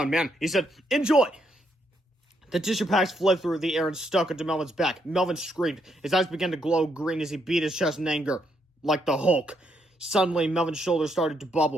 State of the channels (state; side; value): normal; both; correlation 0.76